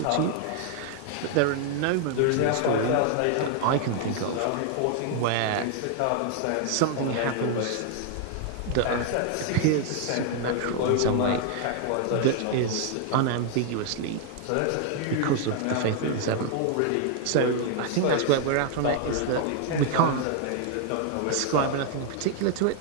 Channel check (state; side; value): different; both; correlation 0.00